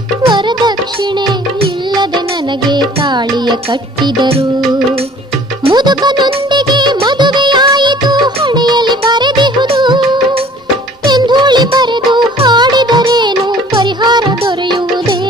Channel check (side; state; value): both; normal; correlation 0.51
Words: ವರದಕ್ಷಿಣೆ ಇಲ್ಲದೆ ನನಗೆ ತಾಳಿಯ ಕಟ್ಟಿದರು. ಮುದುಕನೊಂದಿಗೆ ಮದುವೆಯಾಯಿತು ಹಣೆಯಲ್ಲಿ ಬರೆದಿಹುದು. ಎಂಧೂಳಿ ಬರೆದು ಹಾಡಿದರೇನು ಪರಿಹಾರ